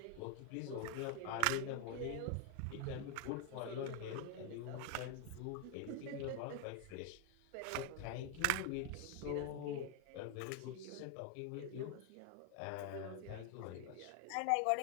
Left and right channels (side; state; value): both; different; correlation 0.01